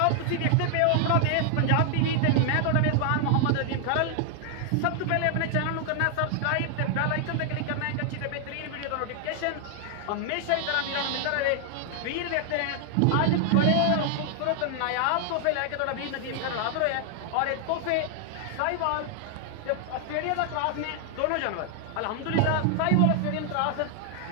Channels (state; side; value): different; both; correlation 0.00